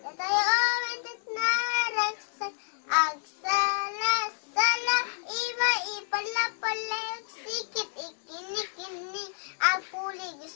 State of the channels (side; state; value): right; silent; 58 dB below the other